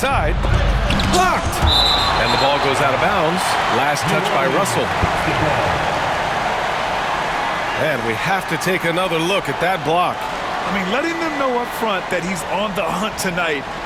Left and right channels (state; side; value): identical; both; correlation 1.00